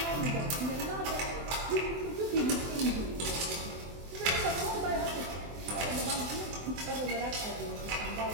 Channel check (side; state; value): left; late; 24 ms